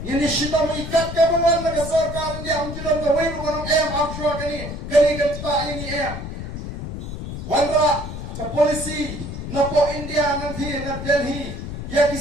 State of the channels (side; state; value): left; noise; rumble, 7 dB below the sound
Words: ini syita mengikat kebangan negara sarkar yang jalan ke wei bukan offshore kani kan tak ini wandra ke polisi napo India nanti na Delhi ya